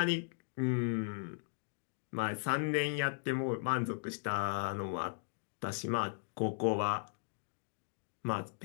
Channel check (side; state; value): right; silent; digital silence